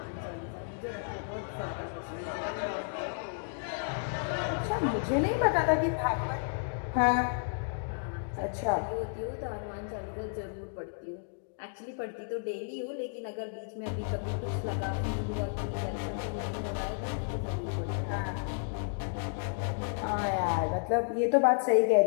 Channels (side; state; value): right; silent; digital silence